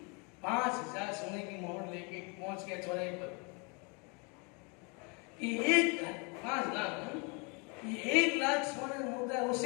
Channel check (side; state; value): right; quieter; 32.1 dB